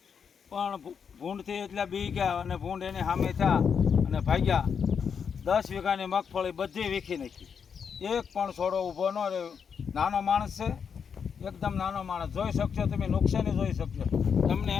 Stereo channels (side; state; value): right; quieter; 6.8 dB